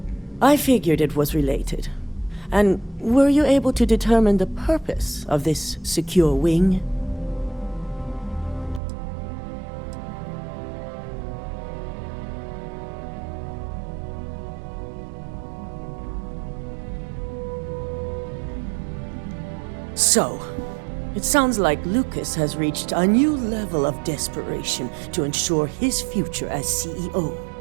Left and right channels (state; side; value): drops out; left; at 8.8 s